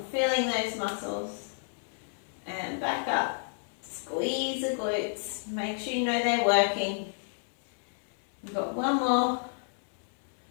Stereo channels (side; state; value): right; silent; digital silence